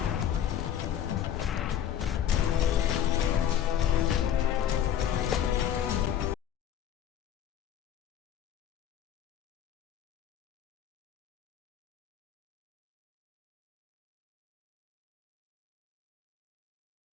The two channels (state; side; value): quieter; right; 10.0 dB